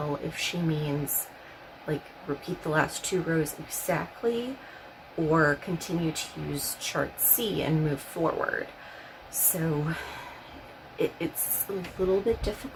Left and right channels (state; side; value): identical; both; correlation 1.00